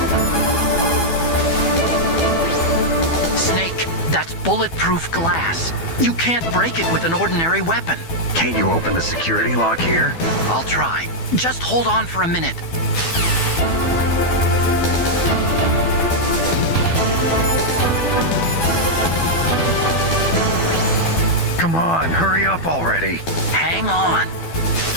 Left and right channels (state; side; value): late; right; 12 ms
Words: Snake, that's bulletproof glass. You can't break it with an ordinary weapon. Can't you open the security lock here? I'll try. Just hold on for a minute. Come on, hurry up already. Hang on.